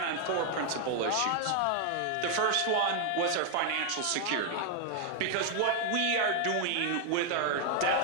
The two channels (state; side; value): different; both; correlation 0.00